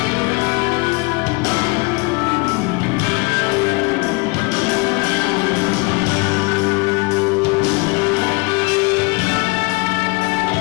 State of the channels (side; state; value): right; quieter; 27.7 dB